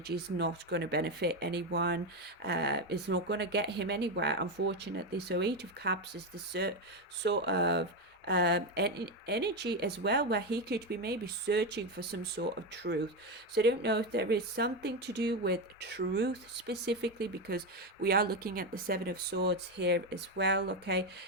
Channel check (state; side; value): normal; both; correlation 0.11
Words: is not going to benefit anyone. It's not going to get him anywhere, unfortunately. So Eight of Cups is the sort of energy as well, where he could be maybe searching for some sort of truth. So I don't know if there is something to do with truth specifically, because we are looking at the Seven of Swords here as well. Okay,